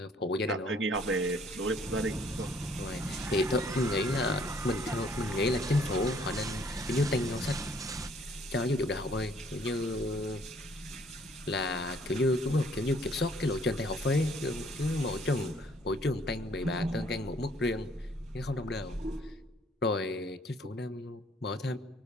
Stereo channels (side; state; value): both; normal; correlation 0.62